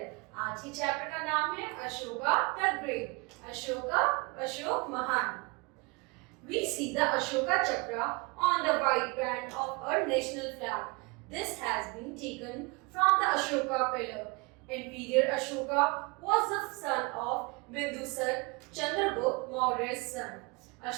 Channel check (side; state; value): left; quieter; 28.1 dB